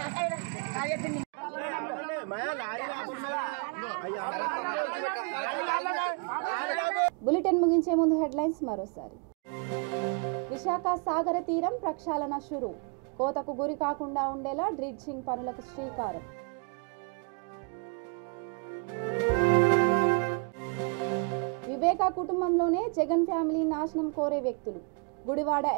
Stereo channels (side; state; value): left; quieter; 37.2 dB